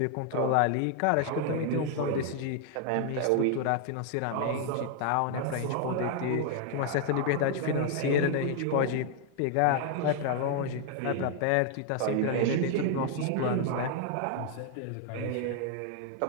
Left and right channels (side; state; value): both; different; correlation 0.00